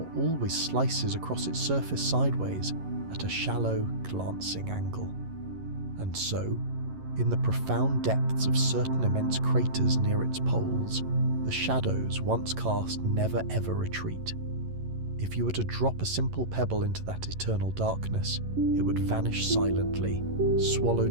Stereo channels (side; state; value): left; late; 11 ms